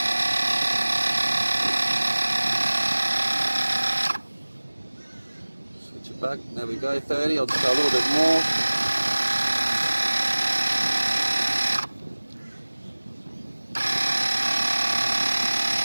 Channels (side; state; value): both; inverted; correlation -1.00